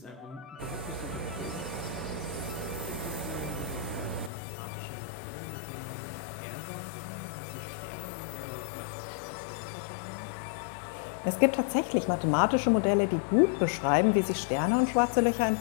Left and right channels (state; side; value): drops out; right; at 4.3 s